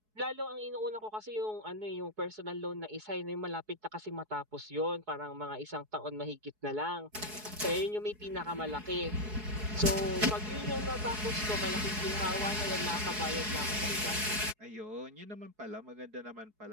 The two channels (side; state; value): left; late; 4.7 ms